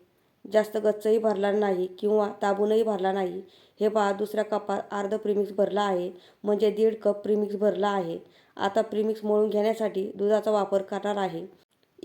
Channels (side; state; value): both; identical; correlation 1.00